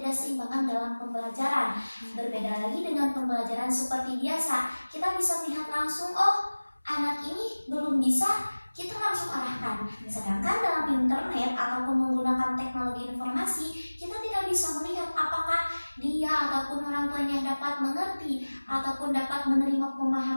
dalam pembelajaran. Berbeda lagi dengan pembelajaran seperti biasa, kita bisa lihat langsung, oh anak ini belum bisa, kita langsung arahkan. Sedangkan dalam internet ataupun menggunakan teknologi informasi, kita tidak bisa melihat apakah dia ataupun orang tuanya dapat mengerti ataupun dapat menerima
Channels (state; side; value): inverted; both; correlation -1.00